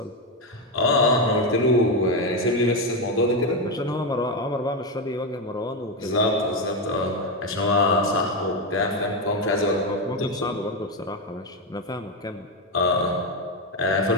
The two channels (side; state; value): both; normal; correlation 0.09